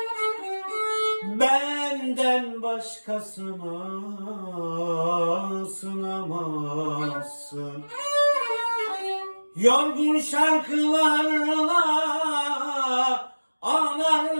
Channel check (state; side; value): inverted; both; correlation -1.00